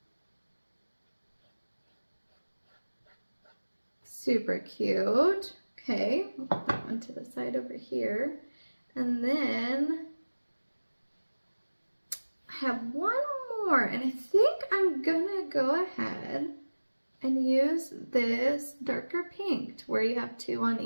Super cute. Okay, we'll put that one to the side over here. And then I have one more, and I think I'm gonna go ahead and use this darker pink to where you have two on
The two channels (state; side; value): inverted; both; correlation -1.00